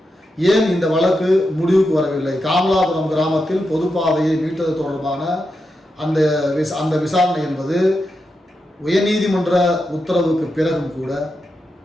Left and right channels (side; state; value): both; normal; correlation 0.87